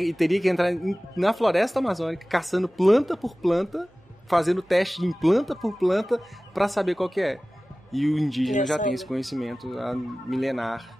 que entrar na floresta amazônica, caçando planta por planta, fazendo teste em planta por planta, para saber qual que é. E o indígena já tem esse conhecimento milenar.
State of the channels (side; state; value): both; normal; correlation 0.97